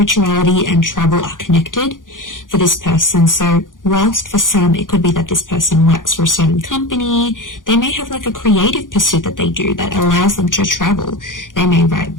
and travel are connected for this person. So whilst for some it could be that this person works for a certain company, they may have like a creative pursuit that they do that allows them to travel. They may write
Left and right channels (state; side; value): late; right; 0.89 ms